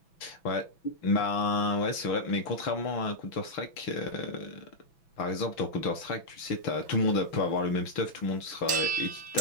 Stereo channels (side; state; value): right; late; 6.0 ms